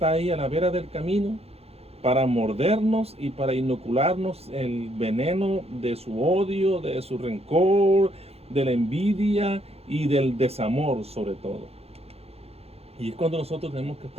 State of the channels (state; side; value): late; left; 0.29 ms